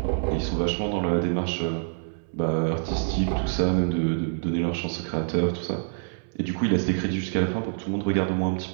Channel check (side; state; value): left; silent; 61 dB below the other